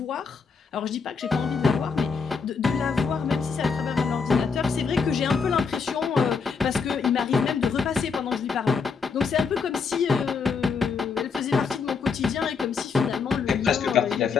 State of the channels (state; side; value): quieter; right; 5.4 dB